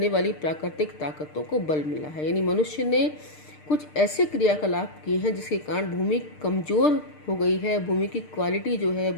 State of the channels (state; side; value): late; right; 6.6 ms